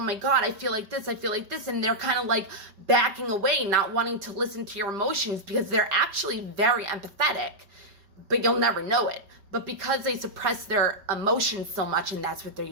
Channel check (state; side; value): late; left; 5.2 ms